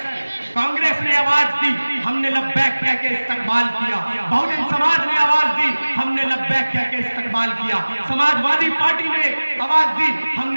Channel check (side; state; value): both; inverted; correlation -1.00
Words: कांग्रेस ने आवाज दी, हमने लब्बैक कह के इस्तकबाल किया, बहुजन समाज ने आवाज दी, हमने लब्बैक कह के इस्तकबाल किया, समाजवादी पार्टी ने आवाज दी,